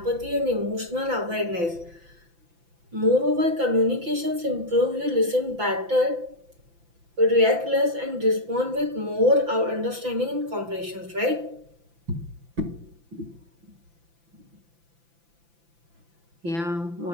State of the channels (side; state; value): left; late; 5.9 ms